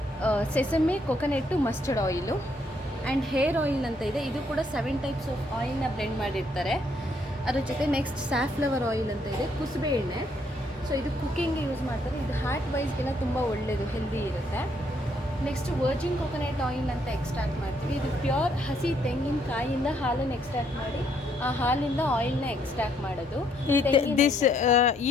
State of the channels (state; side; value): normal; both; correlation 0.71